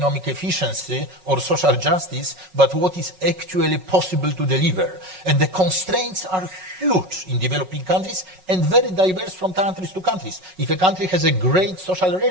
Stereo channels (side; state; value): left; late; 5.4 ms